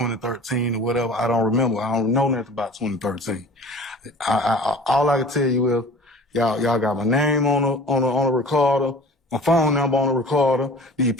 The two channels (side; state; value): both; normal; correlation 0.43